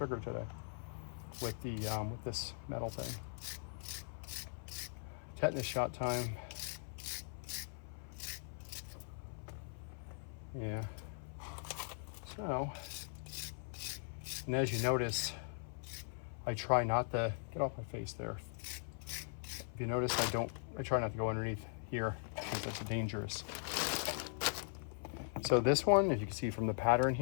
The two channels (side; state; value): right; silent; 51 dB below the other